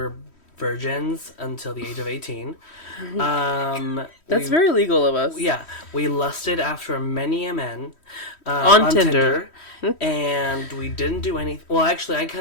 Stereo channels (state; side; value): late; right; 3.1 ms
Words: virgins until the age of 18. That's very legal of us. Yeah, we lusted after many a men On Tinder. and we didn't do anything. Well, actually, I